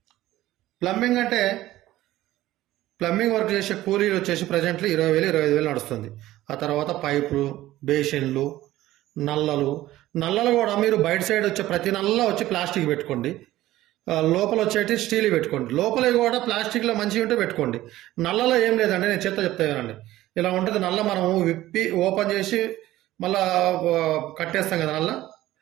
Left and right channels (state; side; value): quieter; left; 15.5 dB